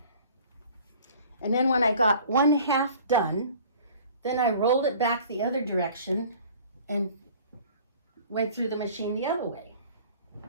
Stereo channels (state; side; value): inverted; both; correlation -0.48